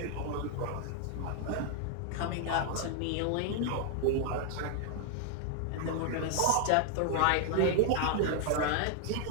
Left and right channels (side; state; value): both; different; correlation 0.00